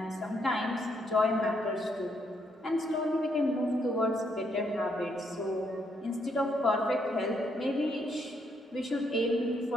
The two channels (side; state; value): both; normal; correlation 0.74